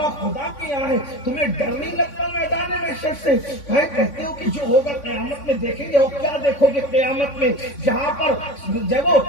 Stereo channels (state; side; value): late; right; 3.5 ms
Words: خدا کے یہاں ہے۔ تمہیں ڈر نہیں لگتا میدان محشر سے؟ کہتے ہو کہ جو ہوگا قیامت میں دیکھیں گے، اور کیا دیکھو گے قیامت میں؟ جہاں پر جب